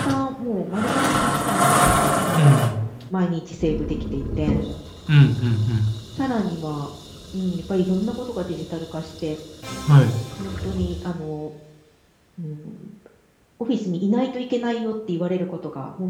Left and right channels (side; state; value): both; identical; correlation 1.00